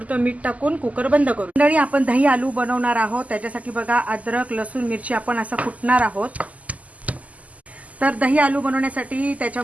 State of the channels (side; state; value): left; late; 0.073 ms